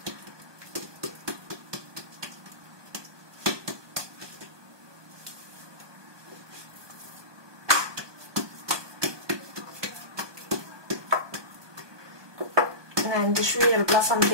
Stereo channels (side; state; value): left; late; 1.2 ms